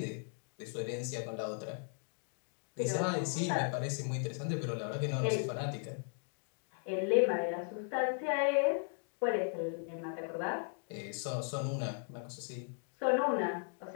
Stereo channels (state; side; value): silent; right; 53 dB below the other